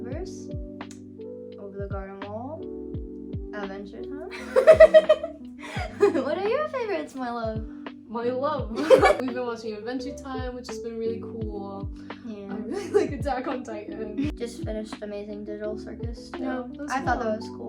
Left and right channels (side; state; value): both; identical; correlation 1.00